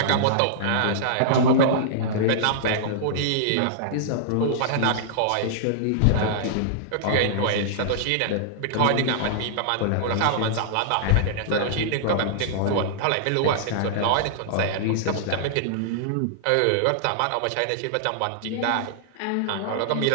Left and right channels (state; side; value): different; both; correlation -0.02